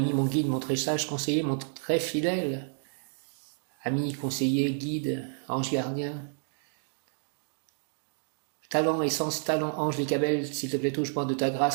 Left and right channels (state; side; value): silent; left; digital silence